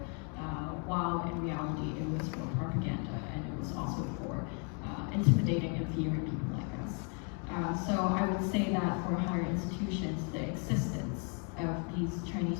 while in reality it was for propaganda and it was also for intimidating and fearing people like us. So I would say that for higher institutions, the existence of these Chinese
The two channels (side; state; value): right; quieter; 39.1 dB